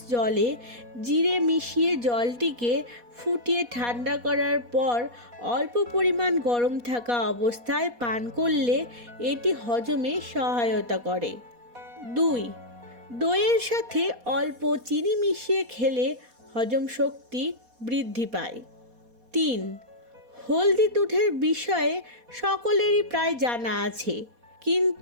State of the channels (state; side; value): late; left; 4.2 ms